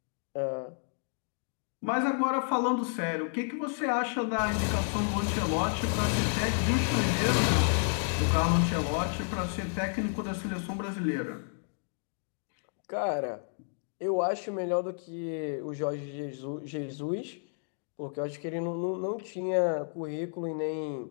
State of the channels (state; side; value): silent; right; 57 dB below the other